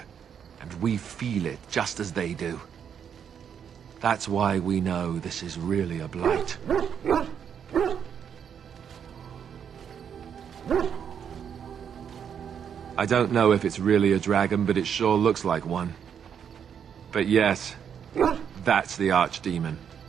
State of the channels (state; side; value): quieter; left; 8.0 dB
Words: and we feel it just as they do. That's why we know this is really a blight. I don't know if it's really a dragon, but it sure looks like one. But yes, that's the Archdemon.